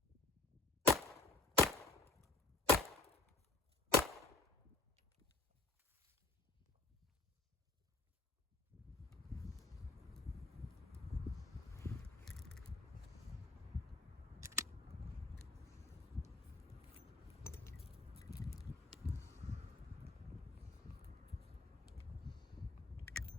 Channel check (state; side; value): quieter; right; 3.2 dB